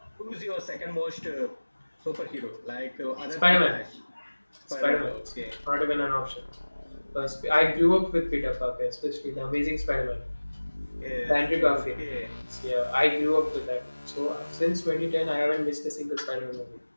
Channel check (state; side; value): inverted; both; correlation -1.00